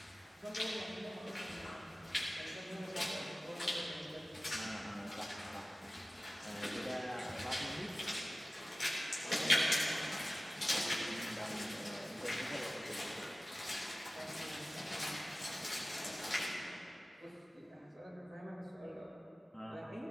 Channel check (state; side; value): normal; both; correlation 0.97